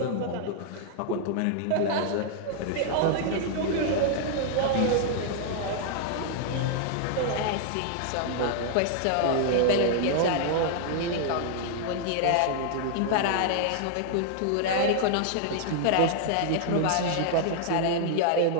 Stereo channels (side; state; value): both; different; correlation 0.00